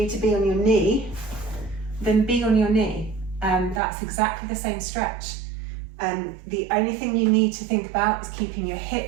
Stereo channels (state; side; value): drops out; left; at 3.8 s